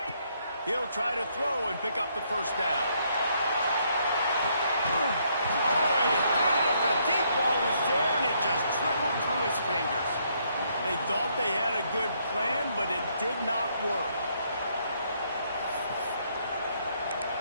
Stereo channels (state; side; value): inverted; both; correlation -0.71